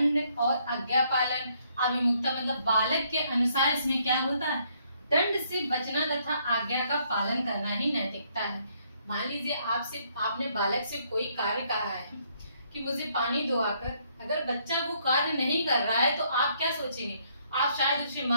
और आज्ञा पालन अभिमुखता, मतलब बालक के अनुसार इसमें क्या होता है, दंड से बचना तथा आज्ञा का पालन करना ही नैतिकता है। मान लीजिए आपने बालक से कोई कार्य कहा है कि मुझे पानी दो आकर, अगर बच्चा वो कार्य नहीं कर रहा है तो आप क्या सोचेंगे, आप शायद उसे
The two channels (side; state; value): both; inverted; correlation -0.69